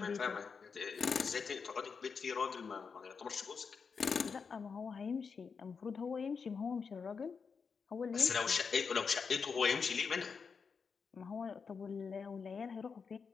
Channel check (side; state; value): right; quieter; 5.6 dB